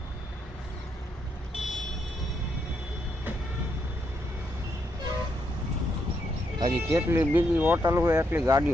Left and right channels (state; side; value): normal; both; correlation 0.78